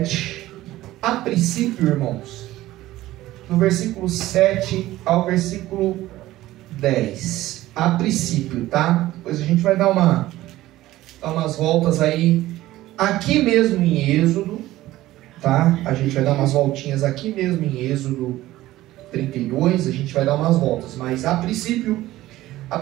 a princípio, irmãos, no versículo 7 ao versículo 10, a princípio, tá? Depois a gente vai dar umas voltas aí, aqui mesmo em Êxodo, tá? A gente vai dar umas voltinhas aqui mesmo em Êxodo 32, a gente vai dar umas voltas, mas a princípio, a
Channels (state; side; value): quieter; left; 16.0 dB